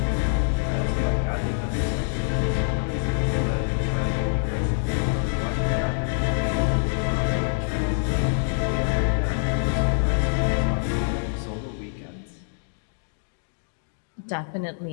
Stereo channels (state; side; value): silent; right; digital silence